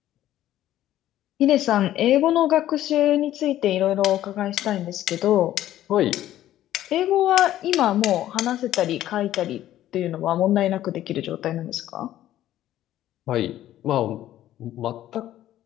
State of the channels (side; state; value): right; quieter; 13.1 dB